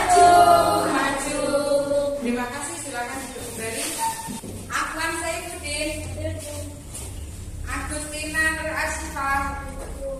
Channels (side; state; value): both; identical; correlation 1.00